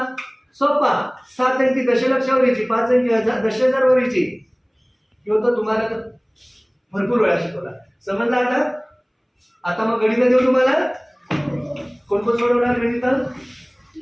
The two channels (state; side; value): identical; both; correlation 1.00